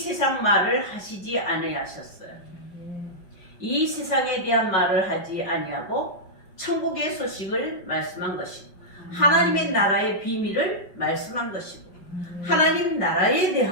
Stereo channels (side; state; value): right; late; 5.4 ms